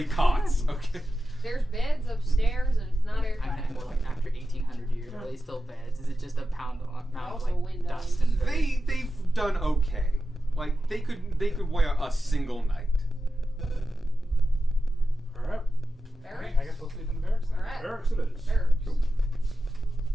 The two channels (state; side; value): normal; both; correlation 0.92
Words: cots. Okay. There's beds upstairs, and it's not I meant airtight. more like after 1800 years. Are they still beds? Is it just a amount of Also like windows. dust and dirt? They've done okay. Like they could wear a single night. Alright. Barracks? I guess we'll sleep in the barracks then. Alright. Barracks it is. Barracks.